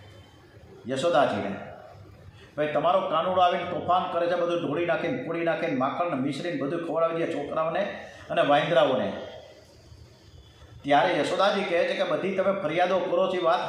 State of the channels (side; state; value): both; identical; correlation 1.00